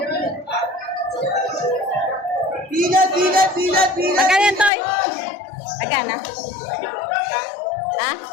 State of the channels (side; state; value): right; drops out; at 4.7 s